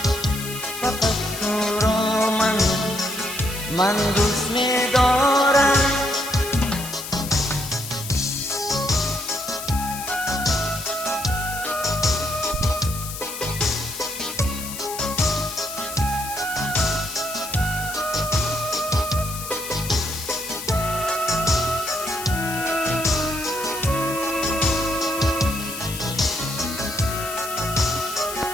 فقط تو را من دوست می‌دارم.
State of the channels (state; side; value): noise; left; hiss, 8 dB below the sound